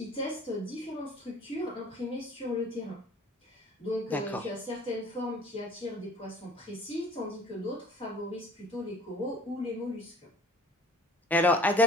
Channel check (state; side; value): normal; both; correlation 0.50